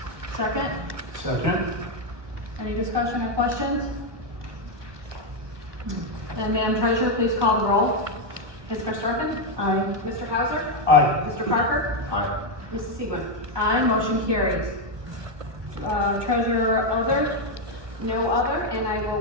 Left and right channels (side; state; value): left; late; 1.2 ms